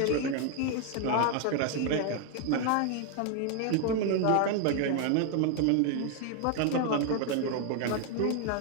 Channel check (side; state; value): both; different; correlation 0.01